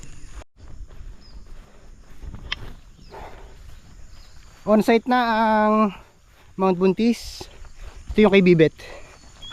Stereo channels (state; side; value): identical; both; correlation 1.00